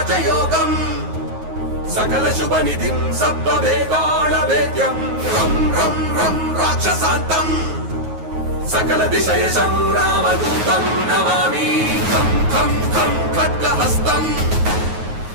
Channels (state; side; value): late; left; 9.4 ms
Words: सकलशुभनिधिं सप्तवेदालवेद्यं रं रं रं राक्षसान्तं सकलदिशयशं रामदूतं नमामि खं खं खं खड्गहस्तं